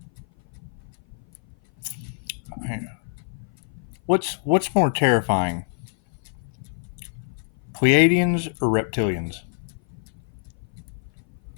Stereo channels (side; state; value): right; silent; 56 dB below the other